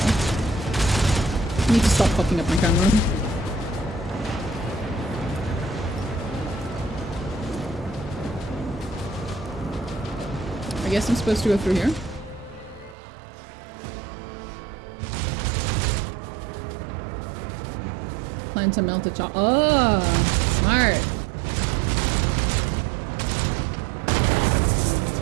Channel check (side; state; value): left; drops out; at 13.0 s